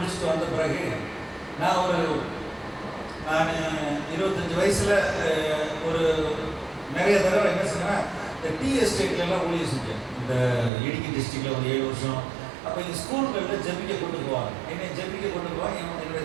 வந்த பிறகு நான் 25 வயசுல ஒரு நிறைய தடவை என்ன சொன்னேன், இந்த டீ எஸ்டேட்லாம் ஊழியர் செஞ்சேன். இந்த இடுக்கி டிஸ்ட்ரிக்ட்ல ஒரு 7 வருஷம். அப்போ இந்த ஸ்கூல்களில் ஜெபிக்க கொண்டு போவாங்க, என்னை ஜெபிக்க கொண்டு போவாங்க. என்னுடைய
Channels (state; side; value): drops out; left; at 10.7 s